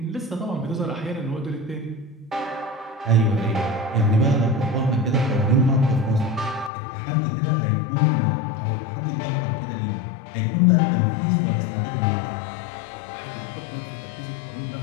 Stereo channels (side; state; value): right; drops out; at 6.7 s